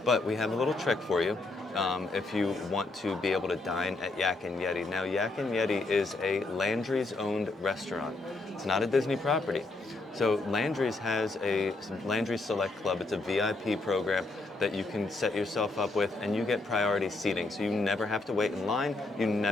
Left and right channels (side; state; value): right; quieter; 3.3 dB